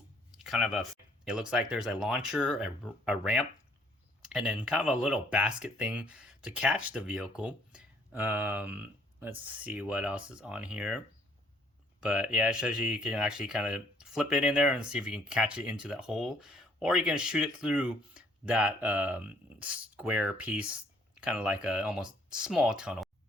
kind of a. It looks like there's a launcher, a ramp, and then kind of a little basket thing to catch the vehicle. Let's see what else is on here. But yeah, it shows you can actually kind of flip it in there and see if you can catch it into that hole, or you can shoot it through that square piece, kind of like a almost small tunnel.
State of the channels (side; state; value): both; normal; correlation 0.62